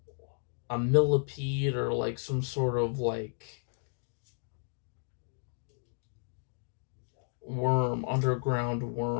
millipede or like some sort of like worm, underground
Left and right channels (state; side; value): silent; right; digital silence